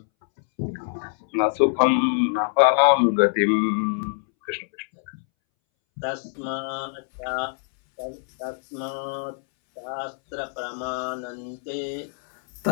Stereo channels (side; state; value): right; silent; 62 dB below the other